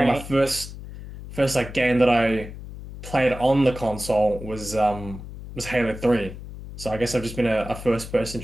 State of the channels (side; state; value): left; noise; hum, 12 dB below the sound